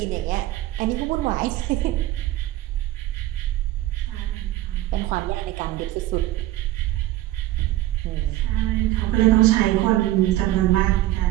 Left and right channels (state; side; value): quieter; left; 15.4 dB